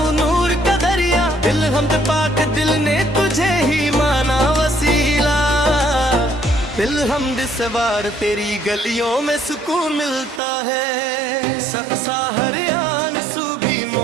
नूर का दरिया, दिल हम पाक दिल ने तुझे ही माना वसीला। दिल हम सवार तेरी गलियों में सुकून मिलता है, सबसा हरियाण सू भी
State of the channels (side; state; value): left; drops out; at 10.4 s